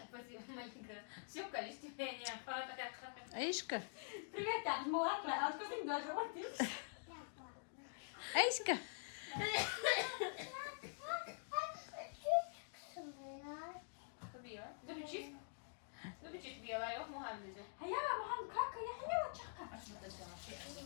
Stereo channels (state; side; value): silent; right; digital silence